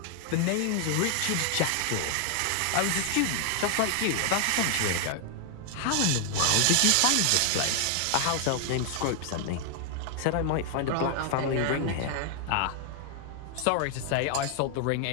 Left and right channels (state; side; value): different; both; correlation 0.00